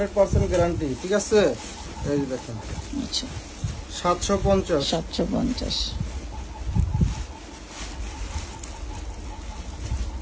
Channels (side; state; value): both; identical; correlation 1.00